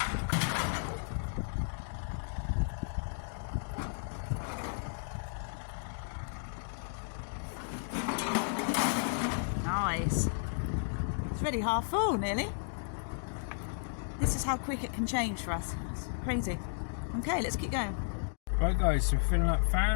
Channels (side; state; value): right; silent; digital silence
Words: Nice. It's already half full, nearly. This is how quick it can change for us. It's crazy. Okay, let's keep going. Right guys, so we're filling up